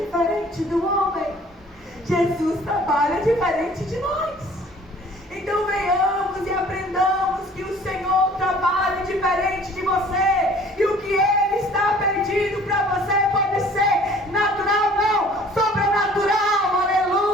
do homem. Jesus trabalha diferente de nós. Então venhamos e aprendamos que o Senhor trabalha diferente de você. E o que Ele está pedindo para você pode ser natural, não, sobrenatural,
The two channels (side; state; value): both; normal; correlation 0.52